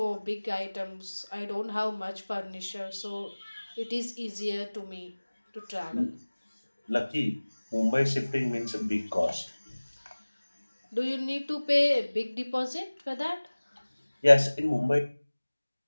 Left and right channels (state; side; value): inverted; both; correlation -1.00